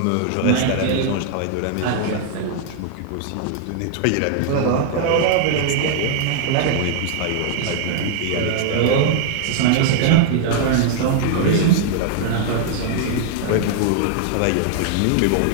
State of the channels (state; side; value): different; both; correlation -0.01